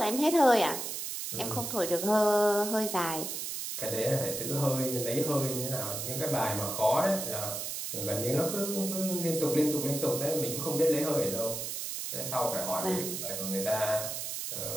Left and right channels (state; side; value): noise; right; hiss, 4 dB below the sound